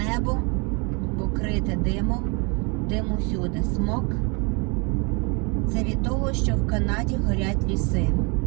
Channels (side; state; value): left; quieter; 31.9 dB